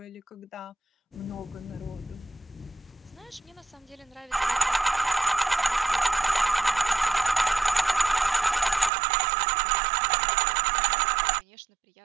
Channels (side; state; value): left; drops out; at 8.9 s